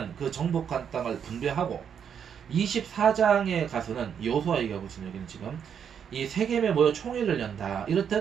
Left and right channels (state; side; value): quieter; left; 7.9 dB